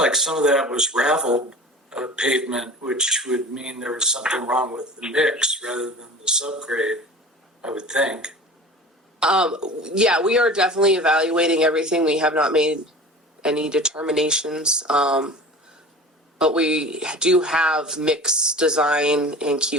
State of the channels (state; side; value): normal; both; correlation 0.38